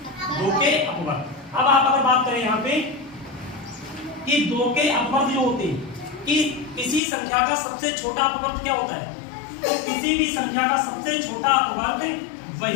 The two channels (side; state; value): right; drops out; at 7.0 s